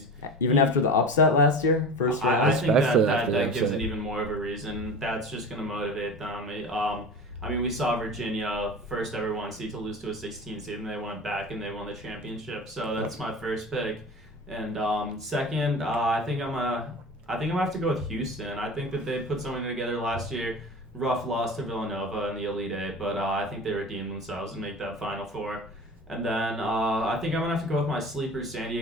and after the upset last year, first round. I think that gives it even more of a reason. That's just going to motivate them. I mean, we saw Virginia, first ever 1 seed to lose to a 16 seed, and they went back and they won the championship. So that's my first pick. And second, I think I'm gonna have to go with Houston. I think that they put something together last year. Rough loss to Villanova in the Elite Eight, but I think they redeemed themselves and make that Final Four. And then I think I'm gonna have to go with my sleeper, San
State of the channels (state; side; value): normal; both; correlation 0.34